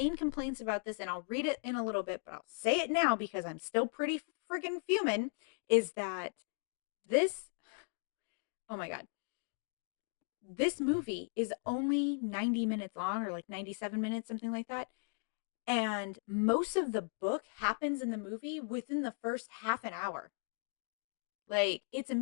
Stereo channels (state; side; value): silent; right; 53 dB below the other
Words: complaints about this, and I'll read it in a little bit, but I'll say it now because I'm still pretty friggin' fuming, is that this, oh my God, this movie is only 90 minutes long, or like 97 minutes, something like that. And most of the book happens in the movie within the first half an hour. Like, it's